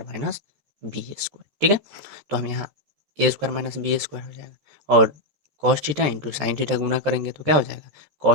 minus B square. ठीक है, तो हम यहाँ A square minus B square हो जाएगा, और cos theta into sine theta गुना करेंगे तो क्या हो जाएगा,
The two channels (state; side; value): late; left; 14 ms